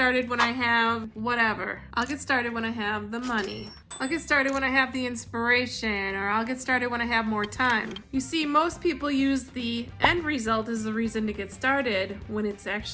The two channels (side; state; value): both; identical; correlation 1.00